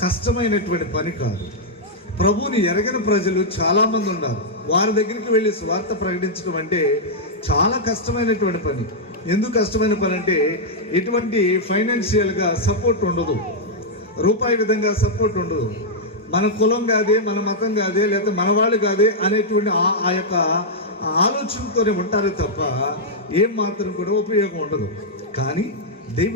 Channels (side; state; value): both; normal; correlation -0.06